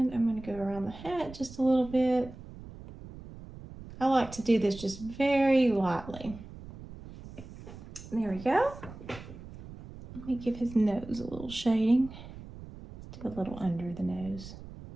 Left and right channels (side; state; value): right; noise; rumble, 15 dB below the sound